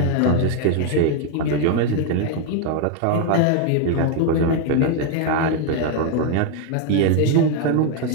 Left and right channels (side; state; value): both; different; correlation 0.01